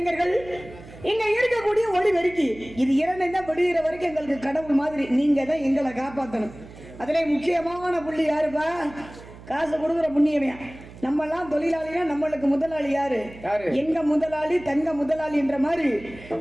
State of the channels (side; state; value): right; noise; hum, 18 dB below the sound